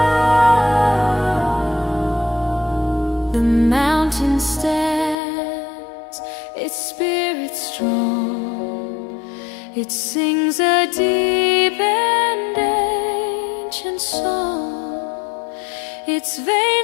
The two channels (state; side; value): drops out; right; at 5.2 s